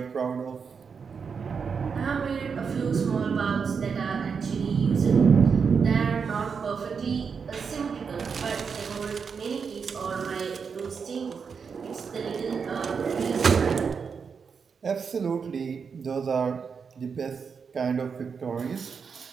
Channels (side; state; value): left; quieter; 5.9 dB